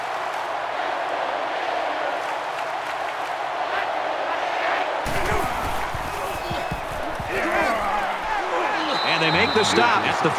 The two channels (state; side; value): identical; both; correlation 1.00